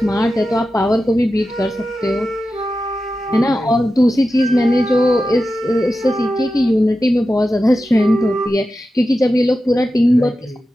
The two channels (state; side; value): normal; both; correlation 0.92